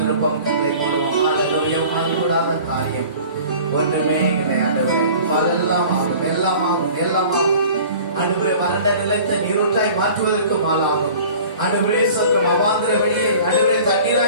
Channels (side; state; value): both; inverted; correlation -0.45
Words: கண்களை மூடுவோம். ஹalleluya. மாறுபடாத காரியம் ஒன்றுமே இல்லை ஆண்டவரே. எல்லாம் ஆகும், எல்லாம் ஆகும், எல்லாம் ஆகும். ஆண்டவரே, வறண்ட நிலத்தை நீரூற்றாய் மாற்றுவதற்கு மாலாகும். ஆண்டவரே ஸ்தோத்திரம். அவாந்திர வெளியை ஆண்டவரே